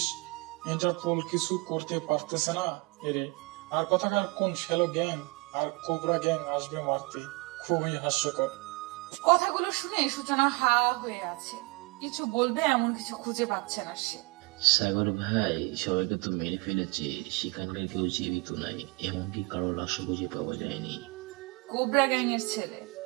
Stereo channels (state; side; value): quieter; left; 26.4 dB